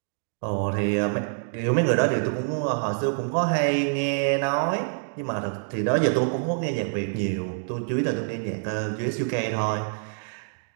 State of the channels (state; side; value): silent; left; digital silence